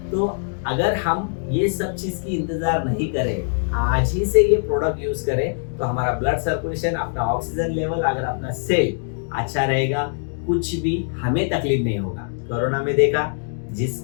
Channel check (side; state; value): right; silent; digital silence